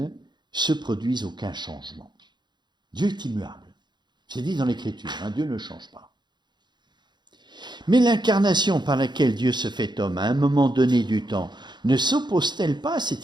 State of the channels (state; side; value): late; left; 0.21 ms